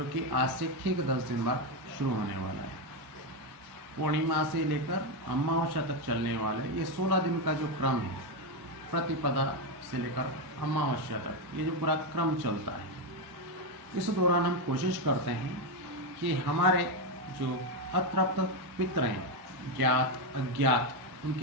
कि आज से ठीक 10 दिन बाद शुरू होने वाला है। पूर्णिमा से लेकर अमावस्या तक चलने वाला ये 16 दिन का जो क्रम है, प्रतिपदा से लेकर अमावस्या तक ये जो पूरा क्रम चलता है, इस दौरान हम कोशिश करते हैं कि हमारे जो अतृप्त पितृ हैं, ज्ञात अज्ञात,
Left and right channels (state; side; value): late; left; 1.1 ms